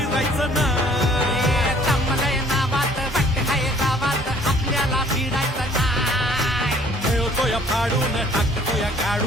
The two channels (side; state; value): both; normal; correlation 0.56